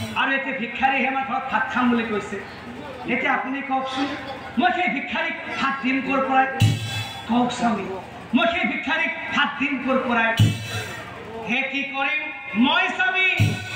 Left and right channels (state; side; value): identical; both; correlation 1.00